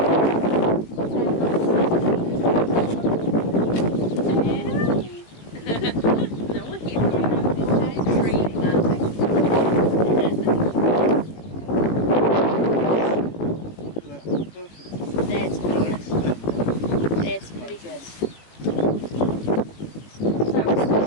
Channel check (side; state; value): right; late; 18 ms